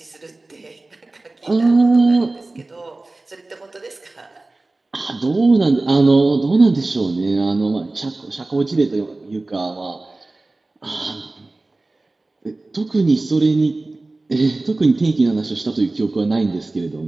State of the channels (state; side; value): quieter; left; 3.1 dB